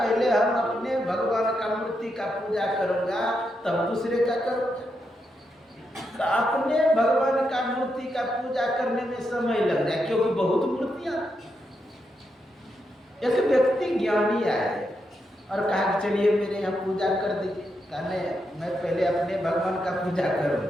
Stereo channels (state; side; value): normal; both; correlation 0.83